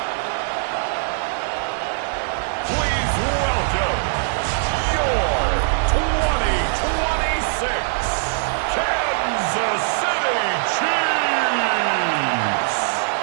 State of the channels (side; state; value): left; silent; digital silence